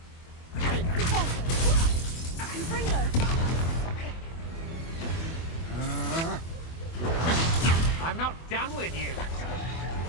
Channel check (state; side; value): late; right; 24 ms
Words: I'm not done with you.